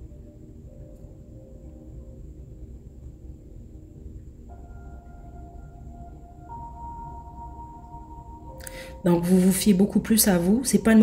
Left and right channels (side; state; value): both; identical; correlation 1.00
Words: Donc vous vous fiez beaucoup plus à vous. C'est pas une